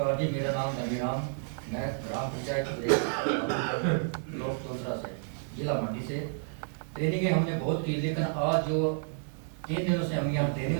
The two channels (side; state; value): left; silent; digital silence